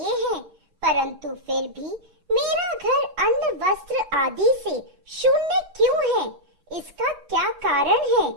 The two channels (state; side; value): late; left; 8.1 ms